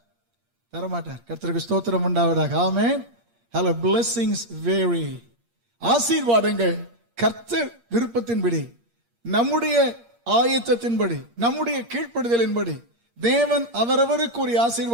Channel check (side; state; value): left; late; 8.6 ms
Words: தரமாட்டார். கர்த்தருக்கு ஸ்தோத்திரம் உண்டாவதாக, ஆமென். Hello, blessings vary. ஆசீர்வாதங்கள் கர்த்தர் விருப்பத்தின்படி, நம்முடைய ஆயத்தத்தின்படி, நம்முடைய கீழ்ப்படுதலின்படி தேவன் அவரவருக்கு ஒரு